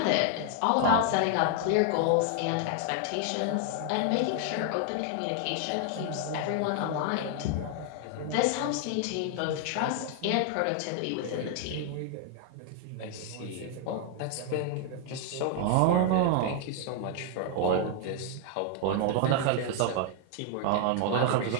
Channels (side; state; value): both; different; correlation 0.00